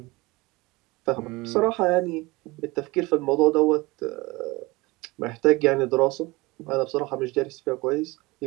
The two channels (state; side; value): quieter; left; 22.6 dB